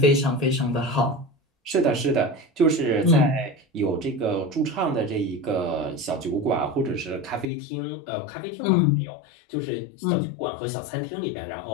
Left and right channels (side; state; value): right; drops out; at 7.5 s